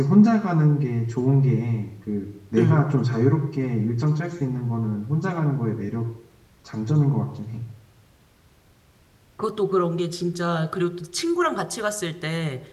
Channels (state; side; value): identical; both; correlation 1.00